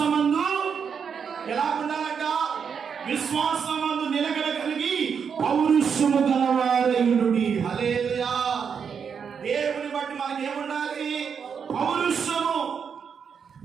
ఎలా ఉండాలంట? విశ్వాసమందు నిలకడ కలిగి పౌరుషము గలవాడై ఉండుడి. హల్లెలూయా. దేవుని బట్టి మనకి ఏముండాలి? పౌరుషము.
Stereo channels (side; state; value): left; quieter; 6.7 dB